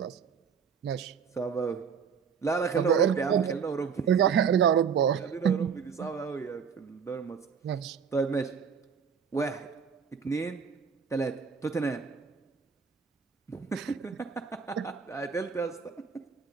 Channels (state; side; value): quieter; left; 6.7 dB